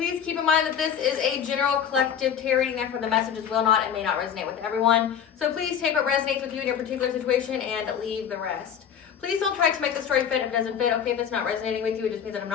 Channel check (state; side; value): quieter; right; 8.2 dB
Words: keep in mind that this is a general collective tarot reading, therefore the messages will not and may not resonate with everyone. So please take what resonates with you in your particular situation and leave the rest. Please don't try to make the story fit if it doesn't fit. Okay, if it's not resonating with you, it just means that I'm